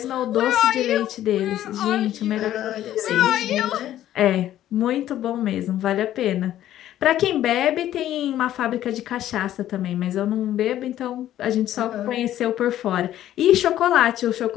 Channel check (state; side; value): quieter; right; 12.5 dB